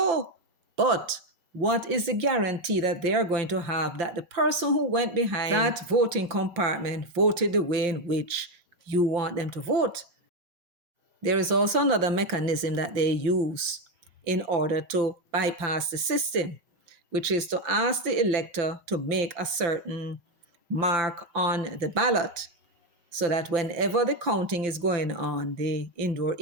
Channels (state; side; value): late; left; 5.9 ms